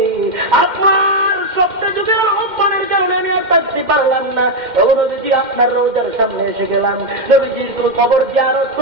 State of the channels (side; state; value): left; late; 2.1 ms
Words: আপনার সপ্তাহ যুগের আহ্বানের কারণে আমি আর থাকতে পারলাম না। ও নবীজি আপনার রওজার সামনে এসে গেলাম। নবীজির খবর জিয়ারত